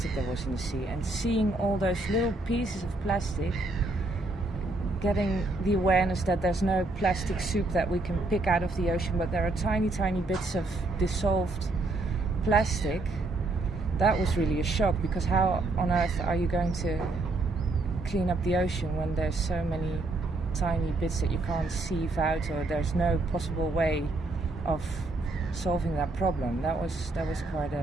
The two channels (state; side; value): quieter; left; 3.1 dB